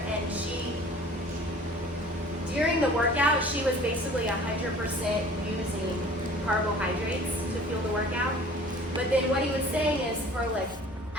and during the workout, she was basically 100% using carbohydrates to fuel the workout. But then what he was saying is for like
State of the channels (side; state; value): both; normal; correlation 0.48